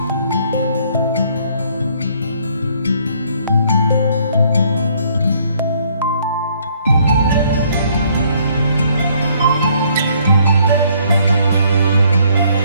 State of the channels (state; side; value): inverted; both; correlation -0.65